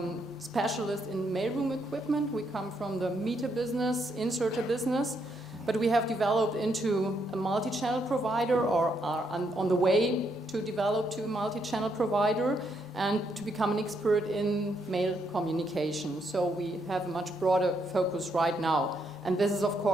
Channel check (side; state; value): both; normal; correlation 0.76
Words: specialist in mailroom equipment. We come from the meter business, inserter business, but we have developed into a multi-channel provider, or are on the way to develop to a multi-channel provider and to become an expert in mail communication. So we have a much broader focus right now. And this is, of